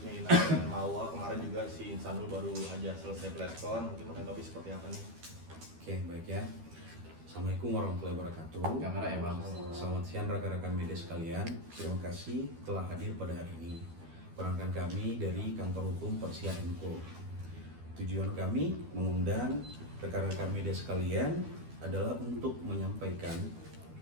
Ina dan Mawa, kemarin juga si Insanul baru aja selesai preskon, mungkin menanggapi seperti apa nih? Oke, baik ya. Assalamualaikum warahmatullahi wabarakatuh. Kamera ya bang. Selamat siang rekan-rekan media sekalian. Terima kasih telah hadir pada hari ini. Perangkat kami dari Kantor Hukum Persia Co. Tujuan kami mengundang rekan-rekan media sekalian adalah untuk menyampaikan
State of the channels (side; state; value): left; late; 12 ms